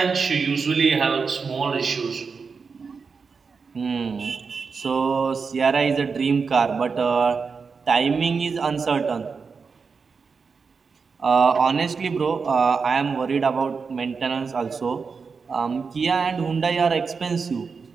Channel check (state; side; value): quieter; left; 5.2 dB